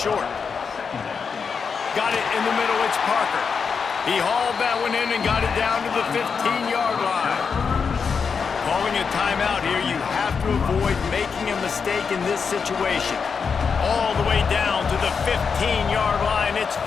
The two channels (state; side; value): quieter; right; 5.8 dB